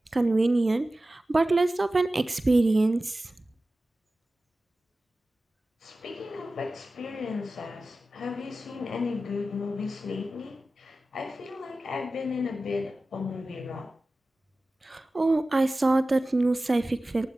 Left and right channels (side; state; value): both; normal; correlation 0.95